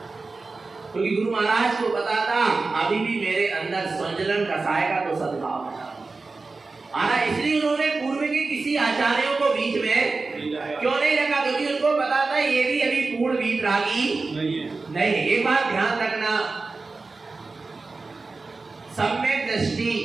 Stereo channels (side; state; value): left; quieter; 3.8 dB